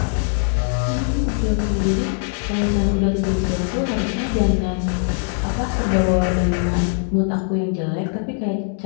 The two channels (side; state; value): right; silent; 58 dB below the other